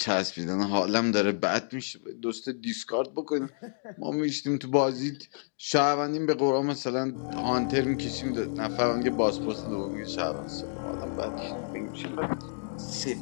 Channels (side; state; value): right; silent; digital silence